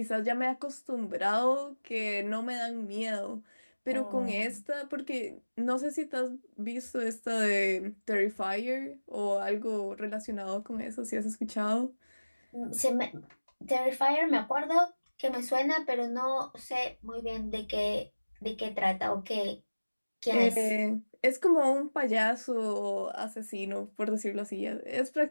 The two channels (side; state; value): both; inverted; correlation -1.00